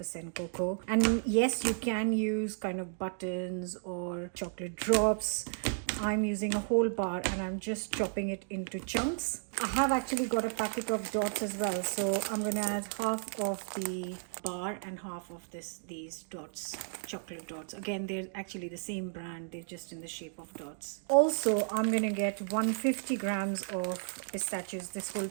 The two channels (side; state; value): left; silent; digital silence